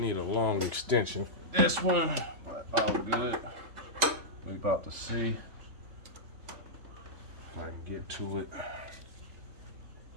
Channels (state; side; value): late; left; 3.4 ms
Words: a long extension for this one, but all good. We about to see if I can get to it. I